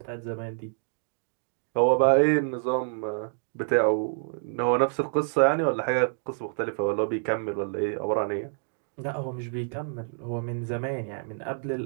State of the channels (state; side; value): silent; left; digital silence